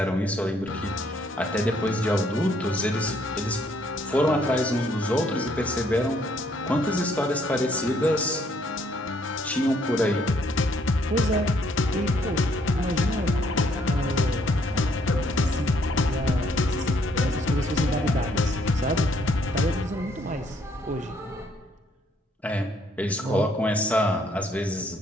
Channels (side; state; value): both; normal; correlation 0.67